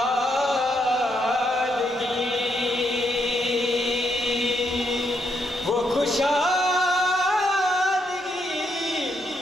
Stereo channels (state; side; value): normal; both; correlation 0.78